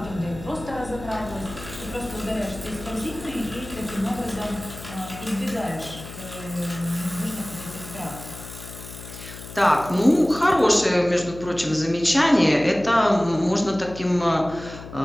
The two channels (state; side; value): noise; left; hum, 13 dB below the sound